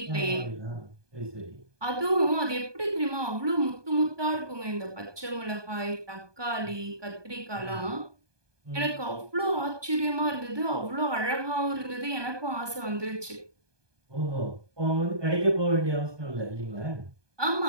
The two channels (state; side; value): late; left; 1.2 ms